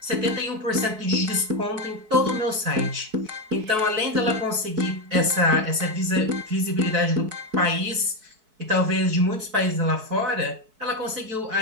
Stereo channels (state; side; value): late; left; 4.6 ms